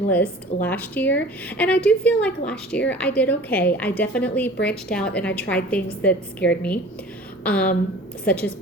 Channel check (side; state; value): both; normal; correlation 0.43